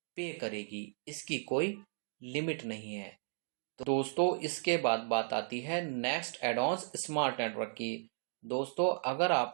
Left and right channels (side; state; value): left; silent; digital silence